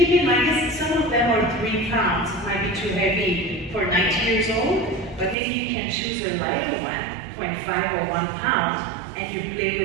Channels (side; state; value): left; drops out; at 5.4 s